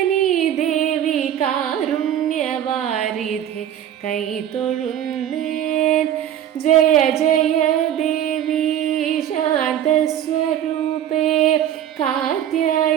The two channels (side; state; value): left; quieter; 10.7 dB